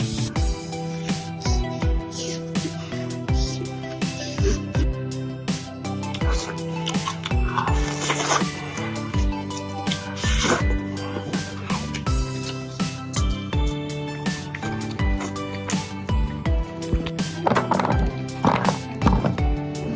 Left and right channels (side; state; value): both; identical; correlation 1.00